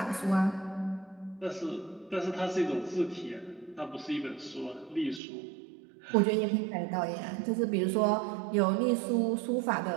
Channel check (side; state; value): left; drops out; at 5.2 s